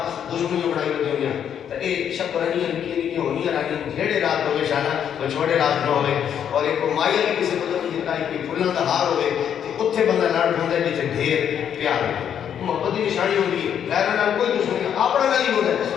دشمنی بڑائی ہوتی ہوئی تو یہ شکرانی نکی ہونی رانی جھیڑے رات ہوئے شانہ وہ چھوڑے رات نہ ہوئے اور ایک مائیا بھی کسی کو نہیں دیتا ہے کہ پھولوں کا ہار ہوئے کہ اتھے بندہ لڑ ہوتا ہے جیسے ڈھیر پیار ہوئے محبت کی نشانی ہوگی غیرہ نال کوئی دشمنی اپنا نہیں ہوتا ہے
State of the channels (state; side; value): quieter; right; 8.9 dB